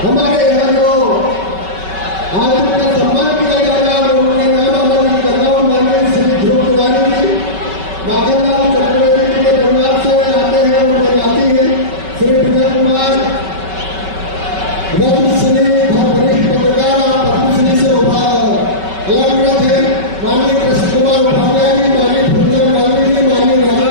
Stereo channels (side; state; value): left; late; 5.3 ms